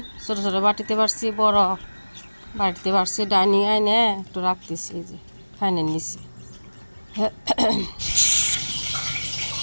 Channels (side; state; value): both; inverted; correlation -1.00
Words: ছোটো ছোটো বাটিতে বাড়ছি, বড় বাটিতে বাড়ছি, ডাইনিং আইনে একটু রাখতেছি, এই যে ফাইনের নিচে।